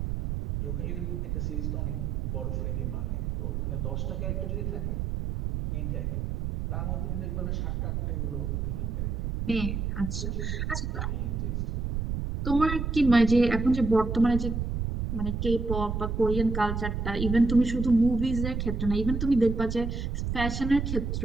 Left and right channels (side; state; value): right; noise; rumble, 2 dB below the sound